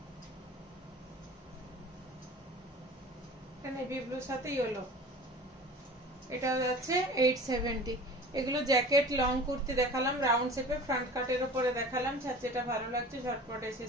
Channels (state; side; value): normal; both; correlation 0.40